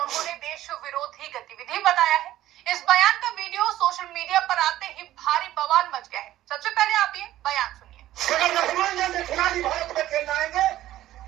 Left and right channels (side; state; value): left; quieter; 14.1 dB